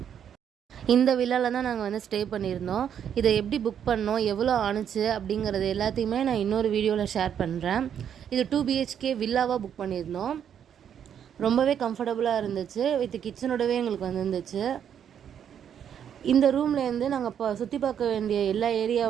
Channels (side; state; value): left; quieter; 8.8 dB